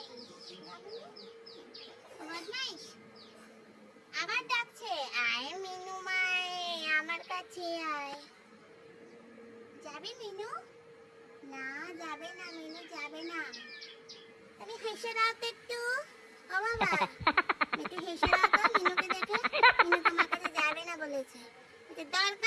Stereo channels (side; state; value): both; identical; correlation 1.00